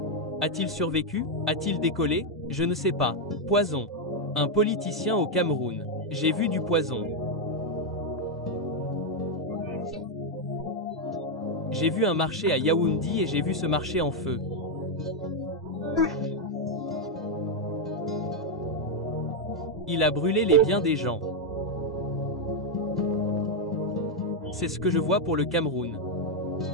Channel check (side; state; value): both; normal; correlation 0.01